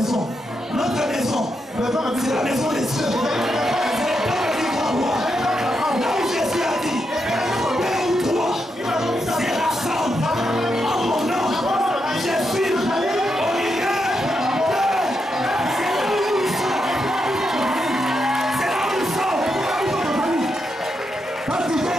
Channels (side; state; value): both; normal; correlation 0.83